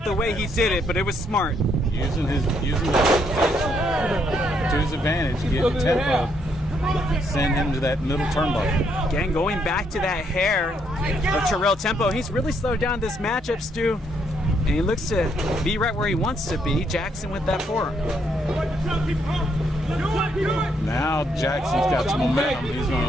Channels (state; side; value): normal; both; correlation 0.73